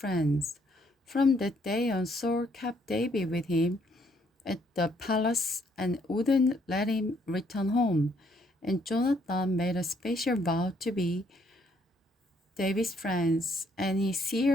From that day on, Saul kept David with him at the palace and wouldn't let him return home. And Jonathan made a special vow to be David's friends, and he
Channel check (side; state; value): both; normal; correlation 0.69